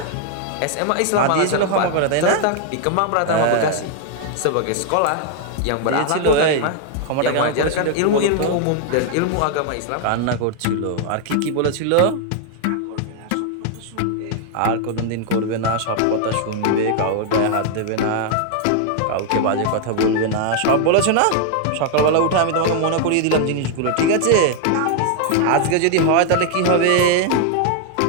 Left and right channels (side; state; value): both; different; correlation 0.00